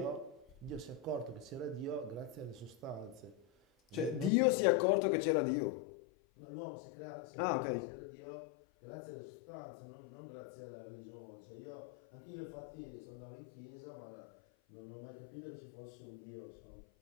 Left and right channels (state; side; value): drops out; right; at 4.3 s